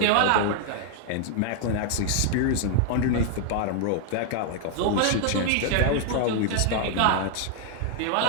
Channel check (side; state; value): both; different; correlation 0.00